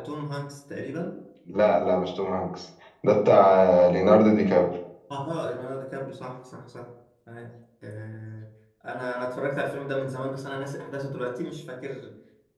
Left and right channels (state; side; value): identical; both; correlation 1.00